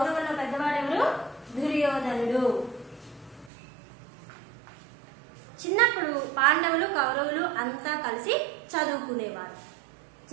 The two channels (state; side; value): drops out; left; at 3.5 s